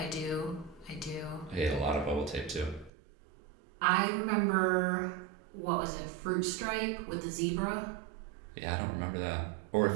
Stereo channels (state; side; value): drops out; left; at 2.9 s